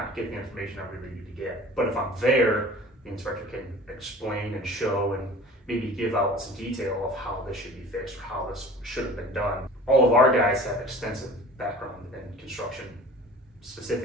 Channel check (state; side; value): normal; both; correlation 0.43